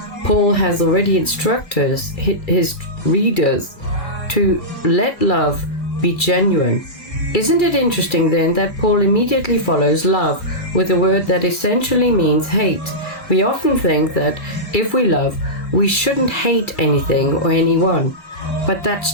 Paul has already instructed his readers to let love be genuine. Isn't it interesting then that Paul immediately follows love with a word that essentially means hate? We often think that if we love, we shouldn't hate anything or anyone, but that's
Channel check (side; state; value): right; late; 2.3 ms